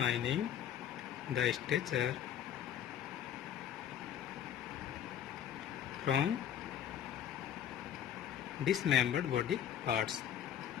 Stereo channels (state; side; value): quieter; right; 9.9 dB